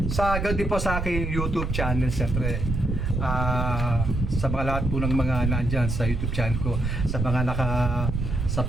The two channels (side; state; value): right; noise; rumble, 2 dB below the sound